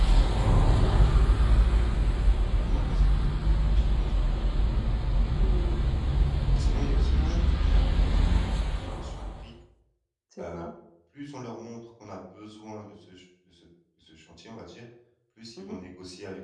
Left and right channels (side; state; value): both; identical; correlation 1.00